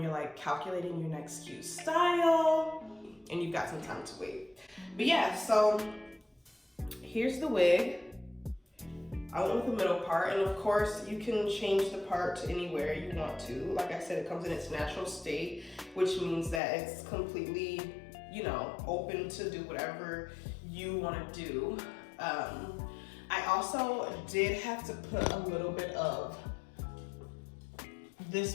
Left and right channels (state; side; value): drops out; right; at 16.6 s